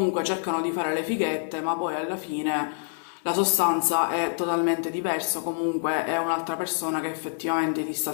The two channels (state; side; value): silent; right; digital silence